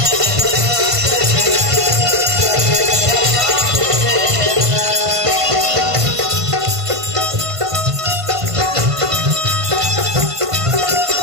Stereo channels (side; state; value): left; late; 1.5 ms